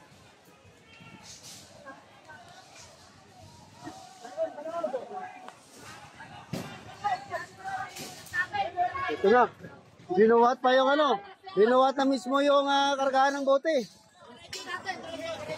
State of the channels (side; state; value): both; identical; correlation 1.00